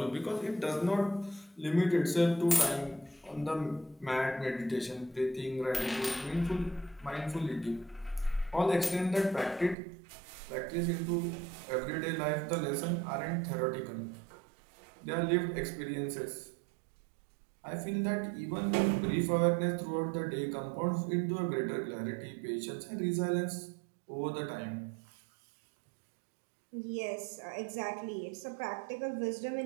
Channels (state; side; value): drops out; left; at 9.8 s